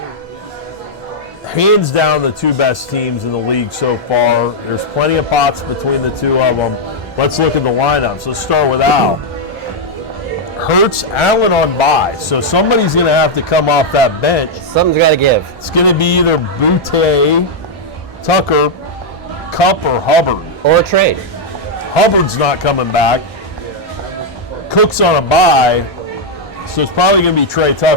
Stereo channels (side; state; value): both; normal; correlation -0.02